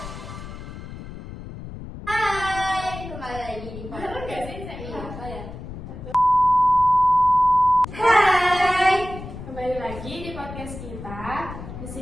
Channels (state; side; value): noise; left; rumble, 11 dB below the sound